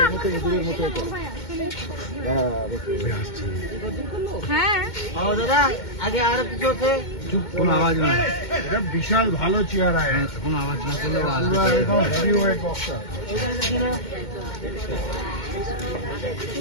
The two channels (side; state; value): right; late; 2.2 ms